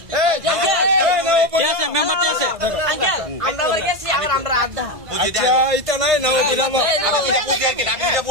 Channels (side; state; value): left; late; 1.5 ms